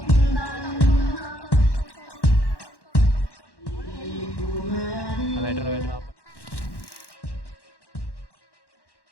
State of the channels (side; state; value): right; late; 1.1 ms